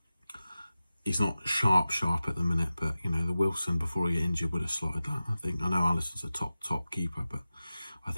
he's not sharp at the minute, but, you know, the Wilson before he got injured would have slotted that, I think. I know Alisson's a top keeper, but I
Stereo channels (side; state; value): both; inverted; correlation -0.95